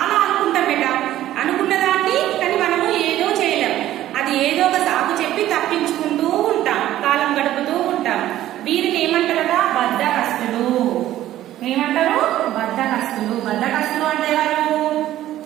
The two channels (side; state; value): left; quieter; 13.5 dB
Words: అనుకుంటాం బేటా, అనుకున్న దాన్ని కానీ మనము ఏదో చేయలేం. అది ఏదో ఒక సాకు చెప్పి తప్పించుకుంటూ ఉంటాం, కాలం గడుపుతూ ఉంటాం. వీరిని ఏమంటారట? బద్ధకస్తులు. ఏమంటారు? బద్ధకస్తులు. బద్ధకస్తులు అంటే ఎవరు?